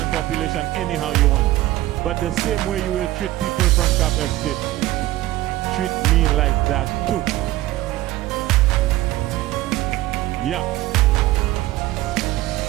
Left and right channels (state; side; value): quieter; left; 16.5 dB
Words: population anyhow you want. But the same way you will treat people from Cap Estate, treat me like that too. Yeah.